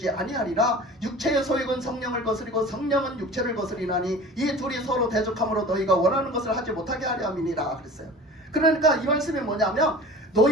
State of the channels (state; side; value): normal; both; correlation 0.40